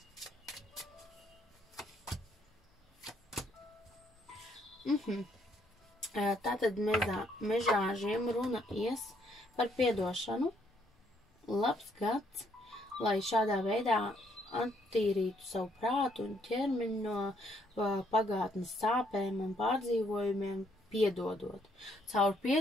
Tātad mežāžiem runa ies par piedošanu, labs gads, lai šādā veidā attīrītu savu prātu un ķermeņu no pagātnes sāpēm un pārdzīvojumiem, piedodot. Caur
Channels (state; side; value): normal; both; correlation 0.70